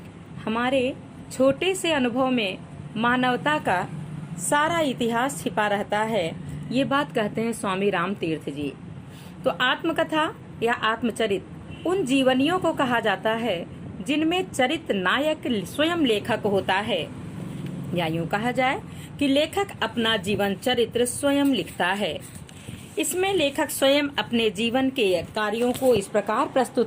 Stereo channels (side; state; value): both; identical; correlation 1.00